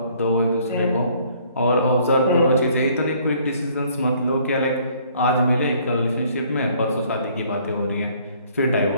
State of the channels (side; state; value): both; inverted; correlation -0.60